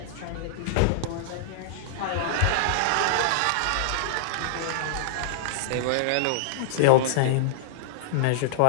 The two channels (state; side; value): different; both; correlation -0.02